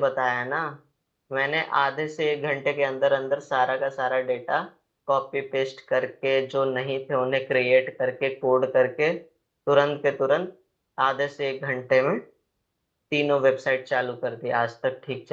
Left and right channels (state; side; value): identical; both; correlation 1.00